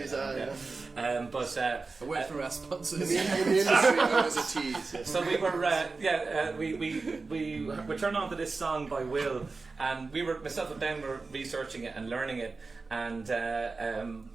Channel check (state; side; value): quieter; left; 4.0 dB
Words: tease, but A word for our sponsors. in the industry, known as a tease. Yeah. so we were turned on to this song by Will, and myself and Ben were researching it and learning it, and